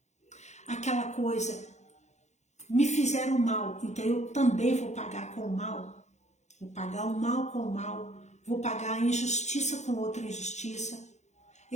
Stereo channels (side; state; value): right; late; 0.33 ms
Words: Aquela coisa, me fizeram mal, então eu também vou pagar com o mal. Vou pagar o mal com o mal, vou pagar a injustiça com outra injustiça.